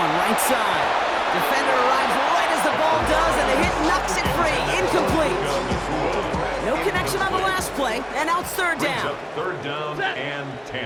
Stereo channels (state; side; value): identical; both; correlation 1.00